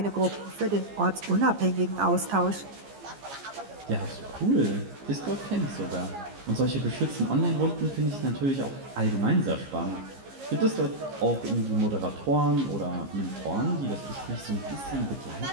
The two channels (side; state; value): left; late; 15 ms